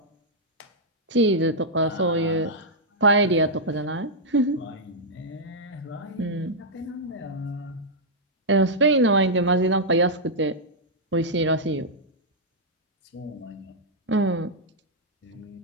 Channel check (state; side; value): normal; both; correlation -0.07